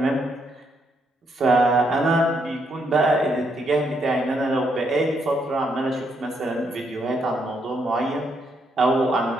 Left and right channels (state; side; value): normal; both; correlation 0.76